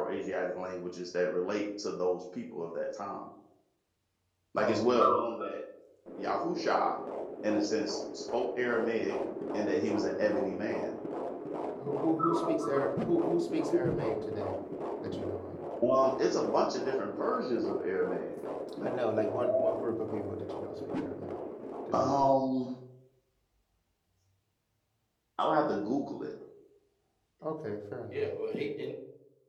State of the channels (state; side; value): identical; both; correlation 1.00